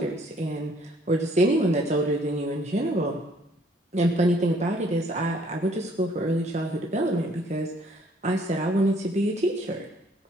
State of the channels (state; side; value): normal; both; correlation 0.62